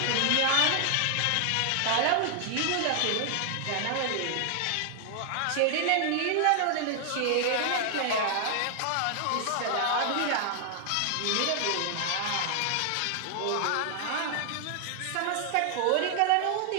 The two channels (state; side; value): different; both; correlation 0.00